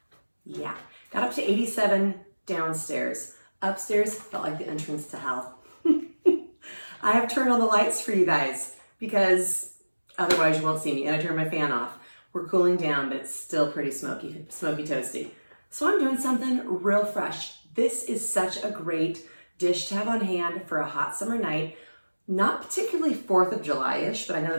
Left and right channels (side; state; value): both; inverted; correlation -1.00